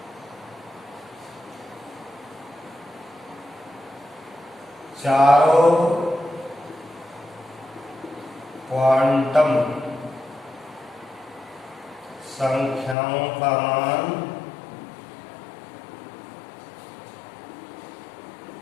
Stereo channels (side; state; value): right; drops out; at 13.0 s